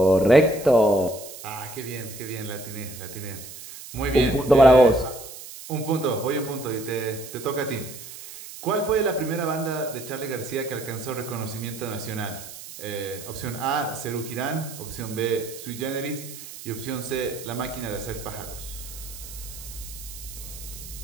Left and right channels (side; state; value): right; noise; hiss, 13 dB below the sound